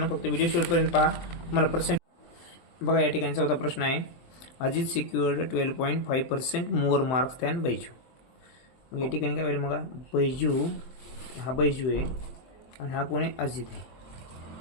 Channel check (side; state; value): right; late; 23 ms